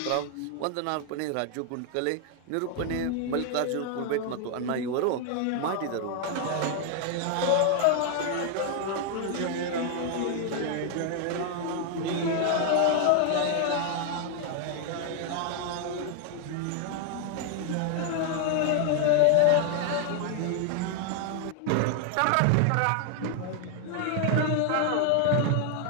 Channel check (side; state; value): both; different; correlation 0.00